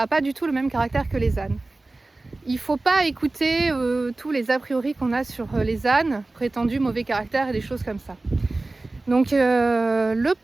pas du tout le même caractère que les ânes. Il ne faut pas écouter tous les a priori qu'on a sur les ânes, prétendus mauvais caractère et des choses comme ça. Donc le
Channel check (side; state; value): left; quieter; 3.1 dB